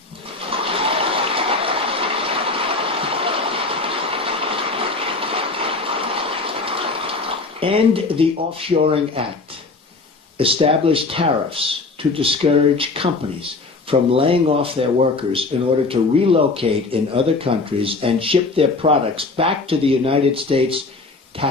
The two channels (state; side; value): quieter; right; 3.7 dB